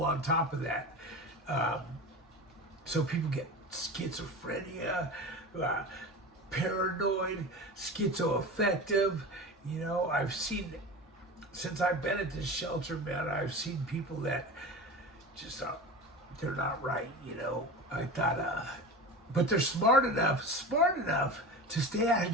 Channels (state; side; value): normal; both; correlation 0.31